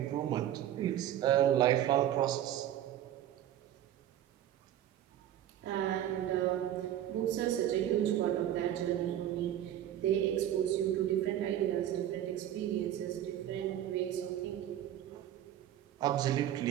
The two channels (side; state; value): left; quieter; 11.6 dB